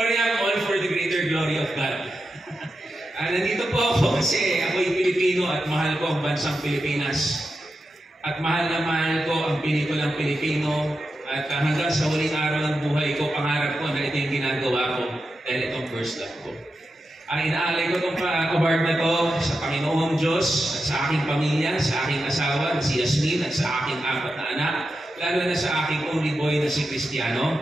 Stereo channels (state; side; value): normal; both; correlation 0.89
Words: all for the greater glory of God. Nandito po ako kasi ako'y Pilipino at mahal ko ang bansang Pilipinas. At mahal na mahal ko ang pelikulang Pilipino. At hanggang sa huling araw ng buhay ko, pangarap ko na ito yung ginagawa ko dahil itong first love ko. Inaalay ko itong award na to sa Panginoong Diyos at sa aking pamilya, sa aking asawa na si Yasmin at sa aking 4 na anak, lalo na sa aking only boy na si